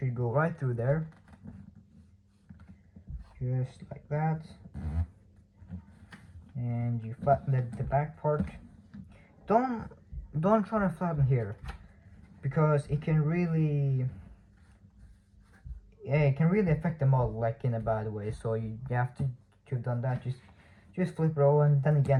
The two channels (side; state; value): both; identical; correlation 1.00